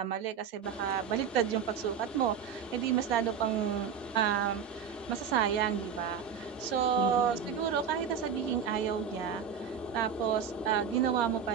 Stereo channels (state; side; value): quieter; left; 7.4 dB